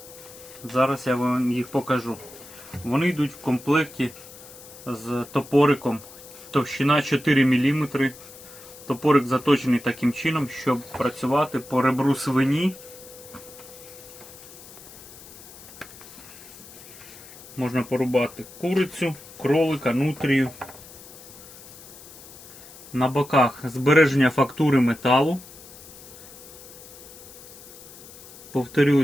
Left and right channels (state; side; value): noise; left; hiss, 18 dB below the sound